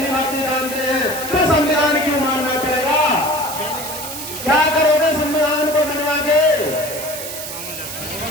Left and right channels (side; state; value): right; noise; hiss, 8 dB below the sound